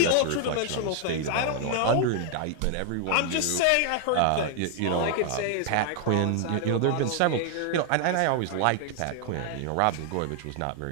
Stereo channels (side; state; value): both; different; correlation 0.00